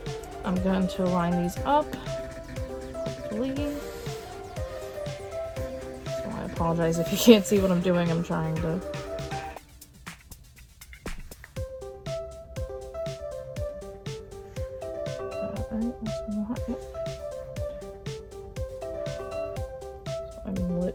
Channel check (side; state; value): both; identical; correlation 1.00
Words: I'm going to line these up, hopefully. So I apologize if you can't see what I'm doing. I'm trying to. I'm